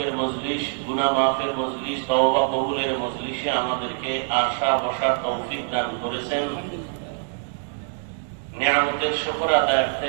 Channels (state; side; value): silent; left; 62 dB below the other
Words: মজলিস গুনাহ মাফের মজলিস তওবা কবুলের মজলিসে আমাদেরকে আসা বসার তৌফিক দান করেছেন। নিয়ামতের শুকর আদায়ার্থে